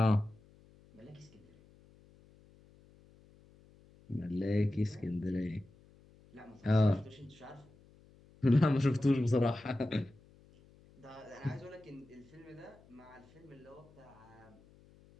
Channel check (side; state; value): left; noise; hum, 26 dB below the sound